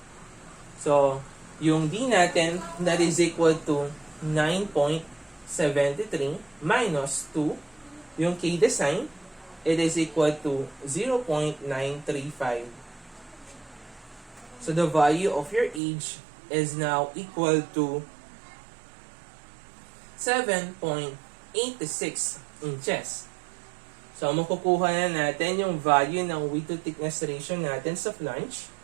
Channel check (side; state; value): left; drops out; at 15.8 s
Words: So, yung D natin that is equal to 9.73 minus 2, yung K design, it is equal to 0.935. So the value of your H is now equal to 7.86 inches. So makukuha na natin yung value ng width to thickness ratio natin sa flange